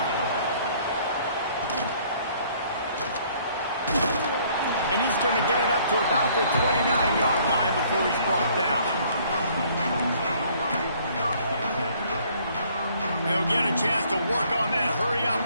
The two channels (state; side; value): inverted; both; correlation -0.60